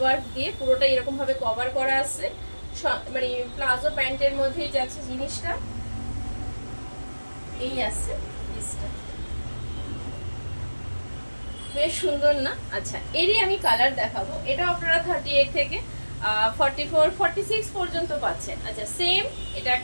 দিয়ে পুরোটা এরকম ভাবে কভার করা আছে, মানে প্লাজো প্যান্টের মধ্যেই যাচ্ছে জিনিসটা। এই আছে পিসটা, বেশ সুন্দর না? আচ্ছা, এরই আমি কালার দেখাবো। এটা আপনারা 38 থেকে 44, 46 পর্যন্ত পাচ্ছেন। আচ্ছা, সেম এটা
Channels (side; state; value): both; inverted; correlation -1.00